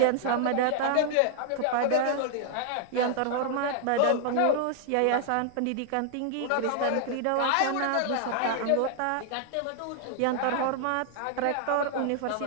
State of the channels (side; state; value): both; different; correlation -0.01